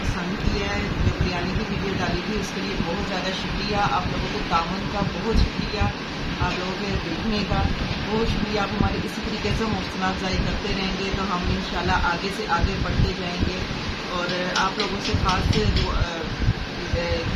किया है, जो बिरयानी की वीडियो डाली थी उसके लिए बहुत ज़्यादा शुक्रिया। आप लोगों को तावन का बहुत शुक्रिया, आप लोगों के देखने का बहुत शुक्रिया। आप हमारे इसी तरीके से हौसला अफजाई करते रहेंगे तो हम इंशाल्लाह आगे से आगे बढ़ते जाएंगे। और आप लोगों से ख़ास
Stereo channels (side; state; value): both; identical; correlation 1.00